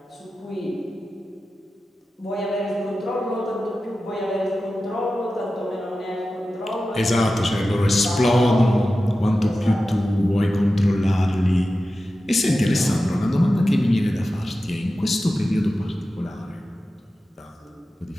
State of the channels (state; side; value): normal; both; correlation 0.93